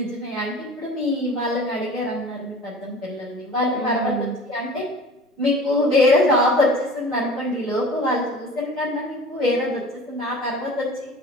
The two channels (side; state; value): both; normal; correlation 0.41